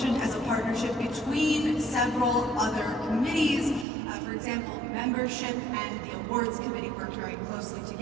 as a partnership between several other committees. For example, membership and the awards committee worked very closely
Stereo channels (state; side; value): drops out; left; at 3.9 s